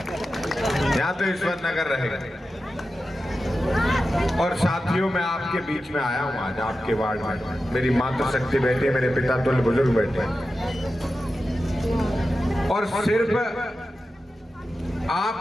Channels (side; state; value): both; normal; correlation 0.92